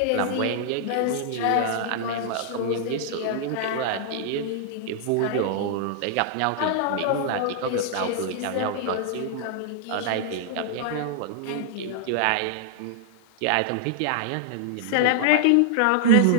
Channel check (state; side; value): different; both; correlation -0.01